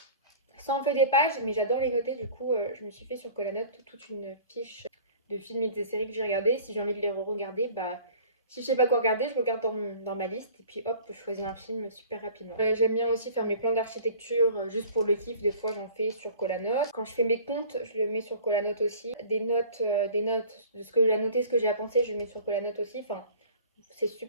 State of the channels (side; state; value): both; inverted; correlation -0.46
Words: ça en fait des pages, mais j'adore les noter. Du coup, je me suis fait sur Colanote toute une fiche de films et des séries que j'ai regardées. Si j'ai envie de les re-regarder, bah, si je sais pas quoi regarder, je regarde dans ma liste et puis hop, je choisis un film super rapidement. J'aime bien aussi faire mes plans d'architecture juste pour le kiff. Des fois, j'en fais sur Colanote. Quand je fais mes comptes, je le mets sur Colanote aussi. Des notes de ce que j'ai à noter, ce que j'ai à penser, je le mets sur Colanote aussi. Enfin, c'est